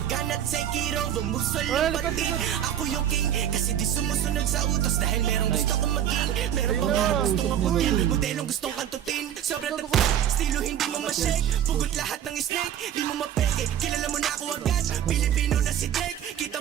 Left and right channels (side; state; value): left; quieter; 10.3 dB